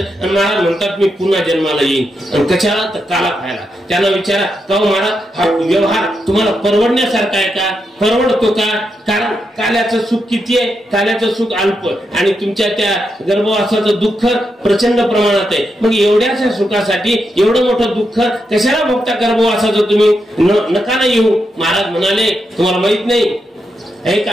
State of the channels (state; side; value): normal; both; correlation 0.84